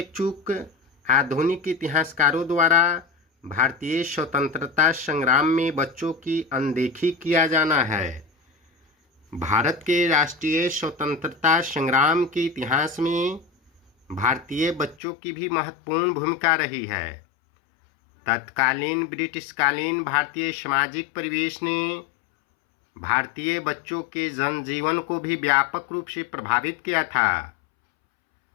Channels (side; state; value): right; drops out; at 15.0 s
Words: चूक आधुनिक इतिहासकारों द्वारा भारतीय स्वतंत्रता संग्राम में बच्चों की अनदेखी किया जाना है। भारत के राष्ट्रीय स्वतंत्रता संग्राम के इतिहास में भारतीय बच्चों की भी महत्वपूर्ण भूमिका रही है। तत्कालीन ब्रिटिशकालीन भारतीय सामाजिक परिवेश ने भारतीय बच्चों के जनजीवन को भी व्यापक रूप से प्रभावित किया था।